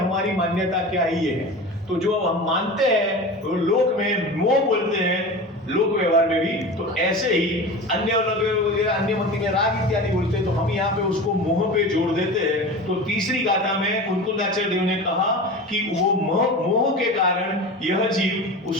मान्यता क्या ही है। तो जो हम मानते हैं तो लोक में मोह बोलते हैं, लोक व्यवहार में भी, तो ऐसे ही अन्य अन्य मति में राग इत्यादि बोलते हैं, तो हम यहाँ पे उसको मोह पे जोड़ देते हैं। तो तीसरी गाथा में कुंतलाचार्य देव ने कहा कि वो मोह के कारण यह जीव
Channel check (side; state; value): both; normal; correlation 0.31